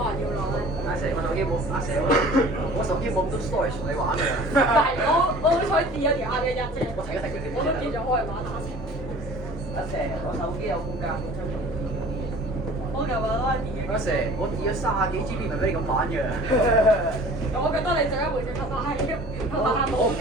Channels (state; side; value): normal; both; correlation 0.46